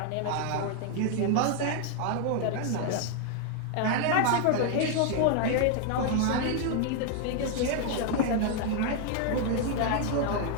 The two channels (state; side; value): different; both; correlation 0.00